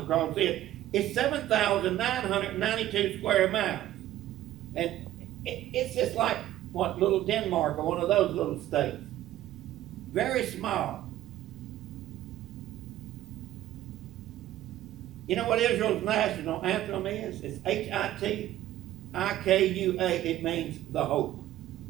across it. It's 7,992 square miles. And it's just like, what, little Denmark or one of those little states. Very small. You know what Israel's national anthem is? It's H-I-T-I-K-U-A. It means the hope.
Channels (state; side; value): quieter; left; 13.8 dB